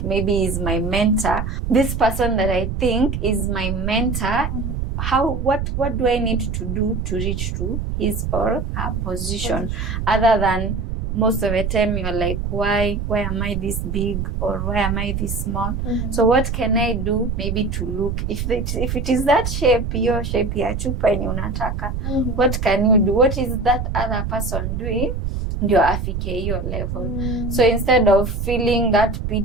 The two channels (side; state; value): right; noise; rumble, 3 dB below the sound